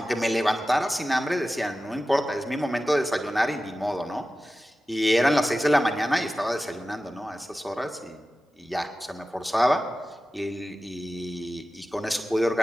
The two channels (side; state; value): both; normal; correlation 0.94